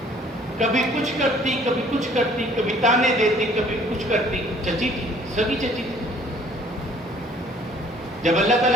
کبھی کچھ کرتی، کبھی کچھ کرتی، کبھی تانے دیتی، کبھی کچھ کرتی. چچی تھی، سگی چچی تھی. جب اللہ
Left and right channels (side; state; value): both; normal; correlation 0.57